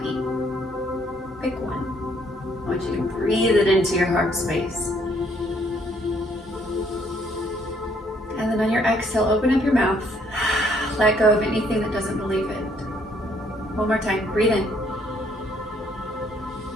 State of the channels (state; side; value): normal; both; correlation 0.67